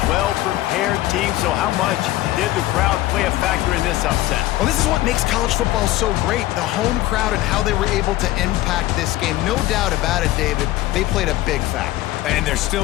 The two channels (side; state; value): right; quieter; 16.4 dB